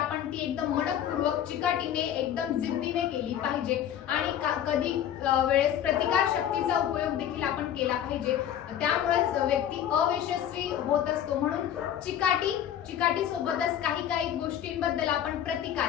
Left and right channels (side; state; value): right; quieter; 10.3 dB